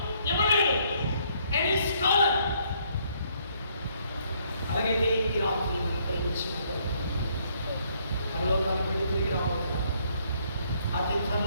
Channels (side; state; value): both; inverted; correlation -0.68